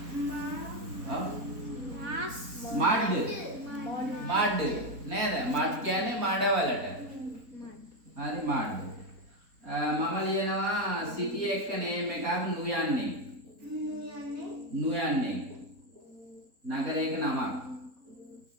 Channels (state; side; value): late; left; 4.1 ms